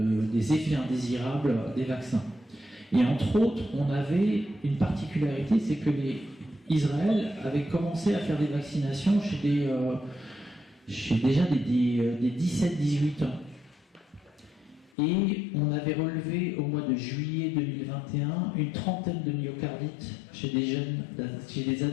effets indésirables des vaccins. Et entre autres, on avait une particularité, c'est que Israël avait commencé à faire des vaccinations chez déjà des 17-18 ans. Et on avait relevé au mois de juillet 2021 une trentaine de myocardites chez des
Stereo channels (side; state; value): right; drops out; at 14.9 s